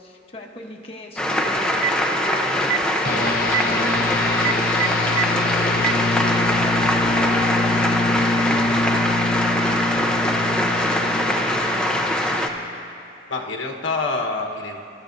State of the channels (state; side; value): normal; both; correlation 0.53